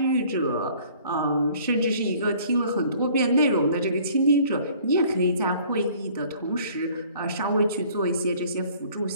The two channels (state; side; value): inverted; both; correlation -0.54